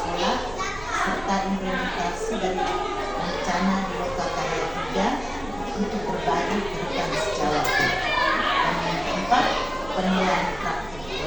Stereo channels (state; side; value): noise; right; rumble, 18 dB below the sound